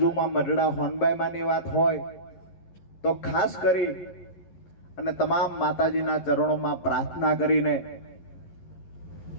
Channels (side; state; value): right; late; 11 ms